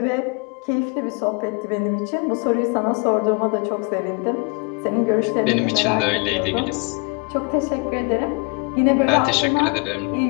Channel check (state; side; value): quieter; right; 30.6 dB